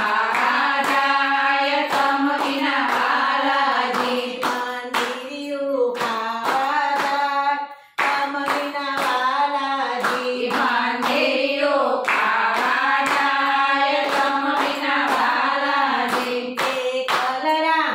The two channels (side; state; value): both; identical; correlation 1.00